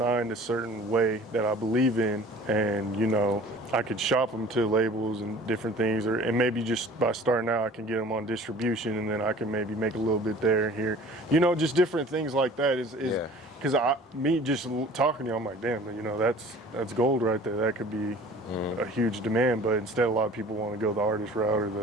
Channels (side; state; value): both; normal; correlation 0.47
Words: a certain way that I believe in, and I could shop them to labels and different things, and maybe just by starting out I can get them on distribution, and then I can maybe make a little bit there and here, just different things like that is because me just talking to you, I'm like, damn, that's gold right there. That could be a huge demand, but instead a lot of people want to go the artist route or